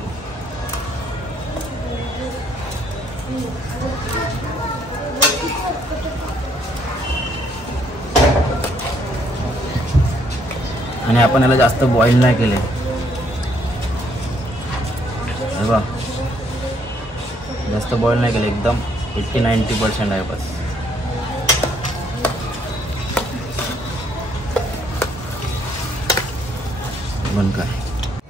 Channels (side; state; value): both; normal; correlation 0.68